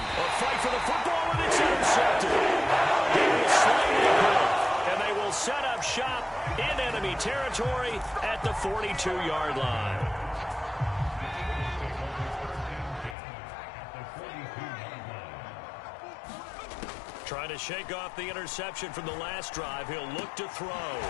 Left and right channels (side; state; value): right; drops out; at 13.2 s